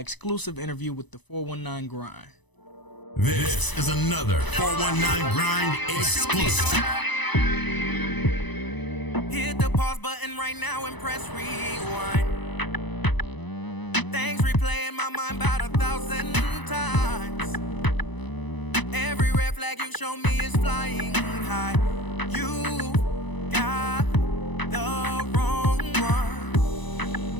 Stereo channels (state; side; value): late; right; 1.0 ms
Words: interview with the 419 Grind. This is another 419 Grind exclusive. Hit the pause button right now and press rewind. Things replay in my mind about 1,000 times. Every red flag you show me is flying high. You got the wrong one.